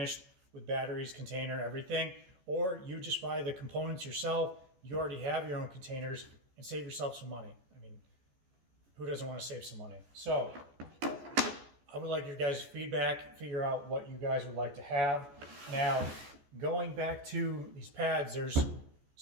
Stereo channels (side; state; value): left; late; 14 ms